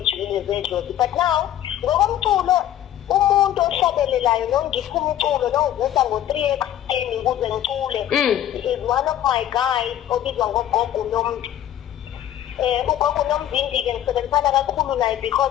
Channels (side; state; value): right; quieter; 11.6 dB